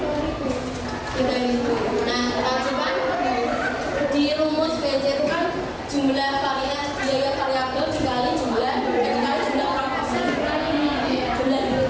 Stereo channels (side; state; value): both; identical; correlation 1.00